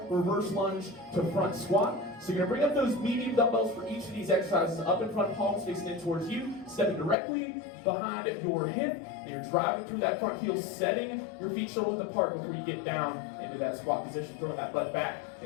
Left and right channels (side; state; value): right; drops out; at 7.2 s